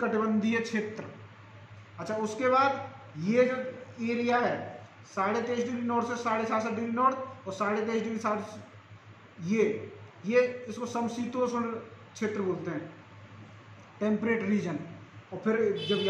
क्षेत्र। अच्छा, उसके बाद ये जो एरिया है 23.5 डिग्री नॉर्थ से 67.5 डिग्री नॉर्थ और 23.5 डिग्री साउथ, ये इसको समशीतोष्ण क्षेत्र बोलते हैं, टेम्परेट रीजन। और फिर जब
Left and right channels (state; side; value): identical; both; correlation 1.00